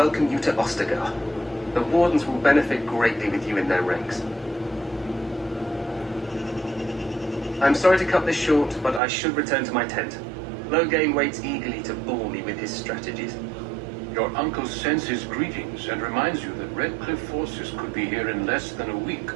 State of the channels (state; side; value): drops out; left; at 9.0 s